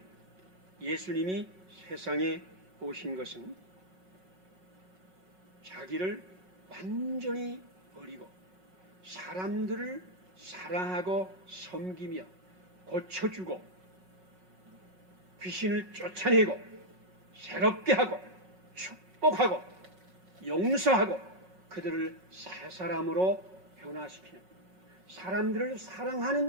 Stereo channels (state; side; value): late; left; 5.4 ms